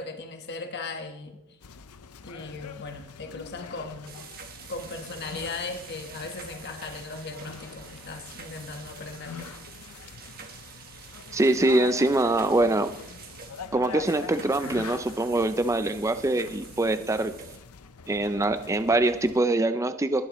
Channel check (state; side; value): normal; both; correlation 0.66